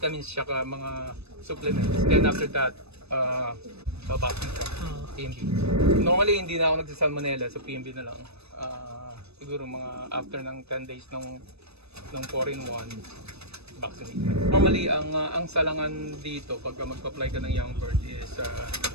tsaka mga supplements. Then after that, babaksin ka. PMB. Normally, hindi na ako nagsasalmonella, so PMB na lang. Siguro mga after ng 10 days ng 4-in-1. Vaccinate. Normally, ang salangan dito pagka magpa-apply ka ng young bird is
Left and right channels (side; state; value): left; late; 0.79 ms